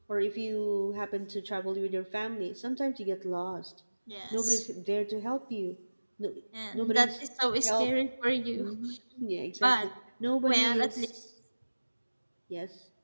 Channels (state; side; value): inverted; both; correlation -1.00